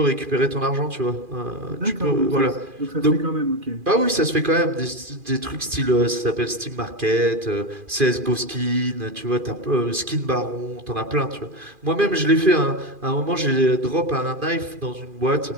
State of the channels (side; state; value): left; late; 2.4 ms